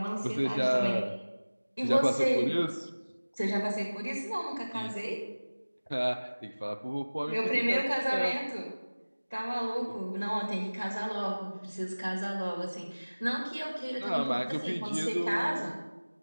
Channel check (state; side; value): inverted; both; correlation -1.00